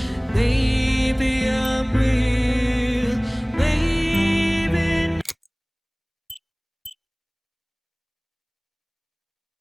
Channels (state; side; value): identical; both; correlation 1.00